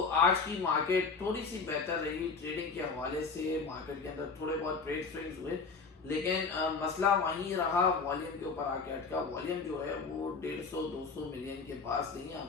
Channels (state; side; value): quieter; right; 4.7 dB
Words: आज की मार्केट थोड़ी सी बेहतर रही ट्रेडिंग के हवाले से। मार्केट के अंदर थोड़े बहुत ट्रेड स्विंग्स हुए, लेकिन मसला वहीं रहा, वॉल्यूम के ऊपर आके अटका। वॉल्यूम जो है वो 150-200 मिलियन के पास नहीं आ